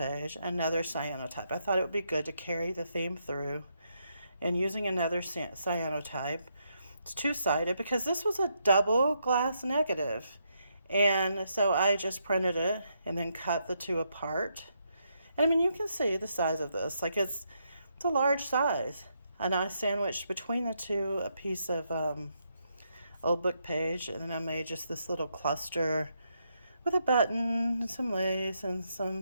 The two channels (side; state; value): both; inverted; correlation -0.79